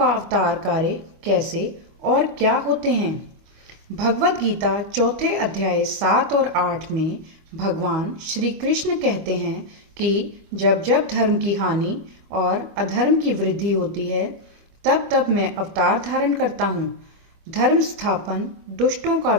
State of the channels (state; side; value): late; left; 25 ms